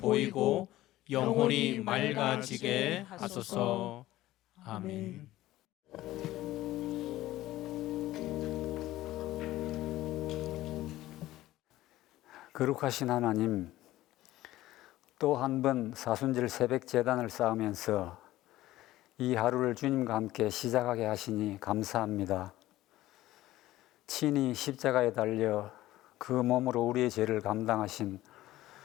영혼이 맑아지게 하소서. 아멘. 거룩하신 하나님, 또 한 번 사순절 새벽 제단을 쌓으면서 이 하루를 주님과 함께 시작하게 하시니 감사합니다. 친히 십자가에 달려 그 몸으로 우리의 죄를 감당하신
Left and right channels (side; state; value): right; quieter; 15.8 dB